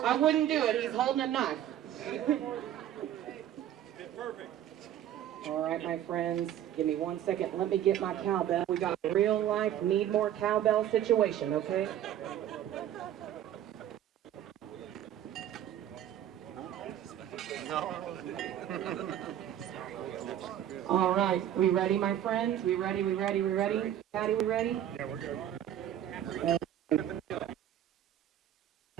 I wouldn't do it. He's holding a knife. Perfect. All right, my friends, give me 1 second. Let me get my cowbell. We got a real life need more cowbell situation, okay? All right, we ready, my friends? We ready? Patty, we ready? Yeah, we're good.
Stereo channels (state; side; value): quieter; left; 11.2 dB